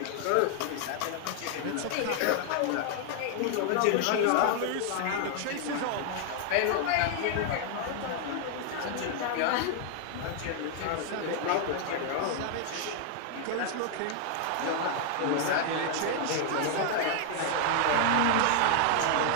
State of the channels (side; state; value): both; different; correlation 0.00